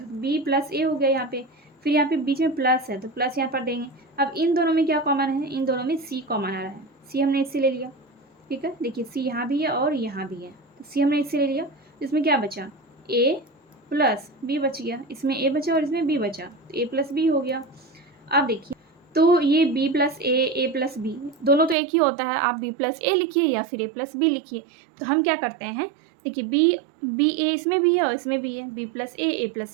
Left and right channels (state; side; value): drops out; left; at 21.8 s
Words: तो बी प्लस ए हो गया यहाँ पे। फिर यहाँ पे बीच में प्लस है तो प्लस यहाँ पर देंगे। अब इन दोनों में क्या कॉमन है, इन दोनों में सी कॉमन आ रहा है, सी हमने इससे ले लिया। ठीक है, देखिए सी यहाँ भी है और यहाँ भी है, तो सी हमने इससे ले लिया। इसमें क्या बचा, ए प्लस बी बच गया, इसमें ए बचा और इसमें बी बचा, तो ए प्लस बी हो गया। अब देखिए, तो ये बी प्लस ए प्लस बी दोनों तो एक ही होता है, आप बी प्लस ए लिखिए या फिर ए प्लस बी लिखिए। तो हम क्या करते हैं, देखिए बी ए इसमें भी है और इसमें भी है, बी प्लस ए